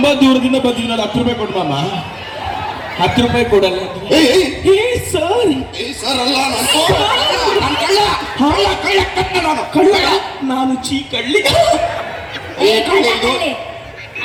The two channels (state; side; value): identical; both; correlation 1.00